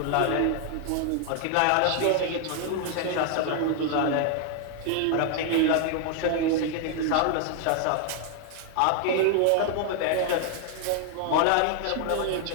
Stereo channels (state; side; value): different; both; correlation 0.00